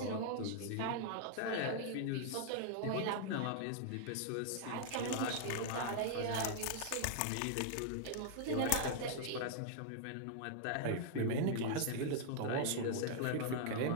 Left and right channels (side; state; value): both; different; correlation -0.01